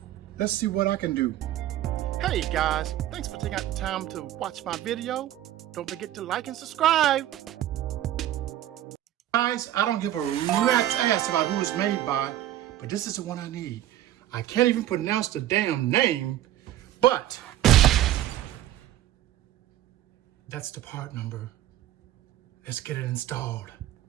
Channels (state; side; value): quieter; left; 12.9 dB